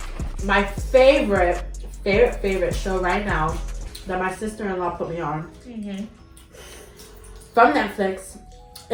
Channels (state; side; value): identical; both; correlation 1.00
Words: My favorite show right now that my sister-in-law put me on from Netflix